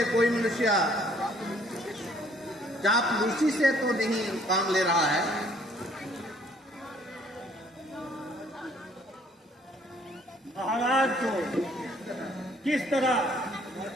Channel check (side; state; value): both; normal; correlation 0.61